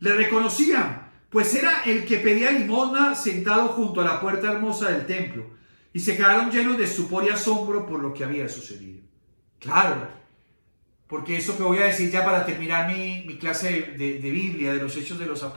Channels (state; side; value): inverted; both; correlation -1.00